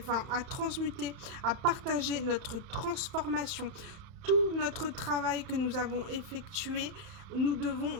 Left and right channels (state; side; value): late; left; 31 ms